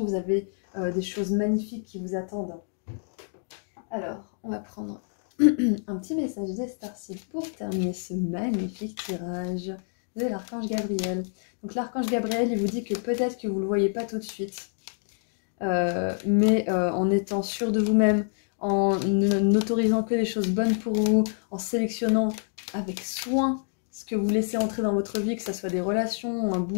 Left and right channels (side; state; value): right; silent; 60 dB below the other